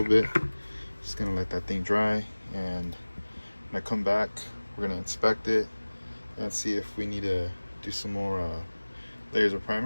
bit. Just gonna let that thing dry, and when I come back, we're gonna inspect it and see if we need to do some more layers of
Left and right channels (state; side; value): inverted; both; correlation -1.00